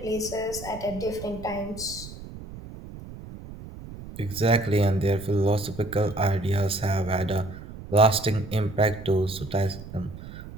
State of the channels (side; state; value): right; noise; rumble, 13 dB below the sound